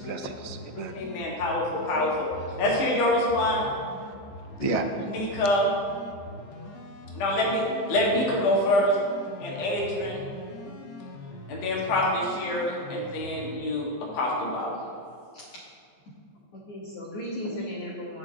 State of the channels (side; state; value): right; late; 15 ms